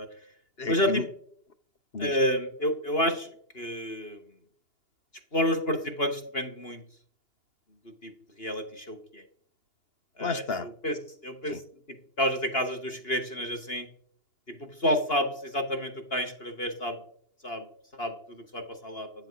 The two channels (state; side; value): late; right; 2.8 ms